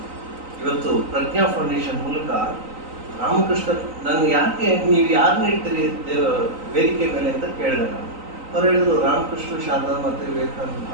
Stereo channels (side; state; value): left; late; 3.9 ms